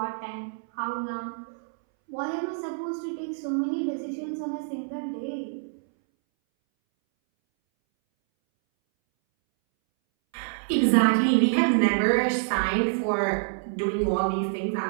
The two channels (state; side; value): silent; left; 60 dB below the other